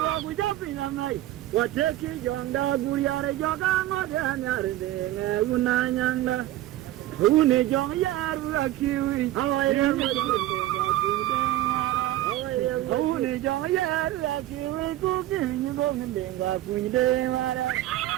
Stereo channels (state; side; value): quieter; left; 14.9 dB